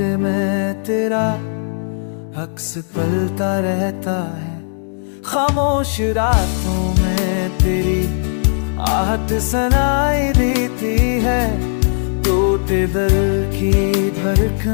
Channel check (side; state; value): right; silent; digital silence